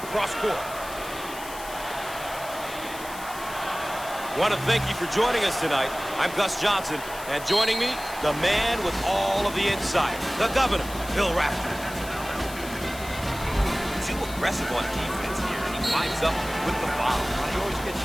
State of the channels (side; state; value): left; noise; hiss, 14 dB below the sound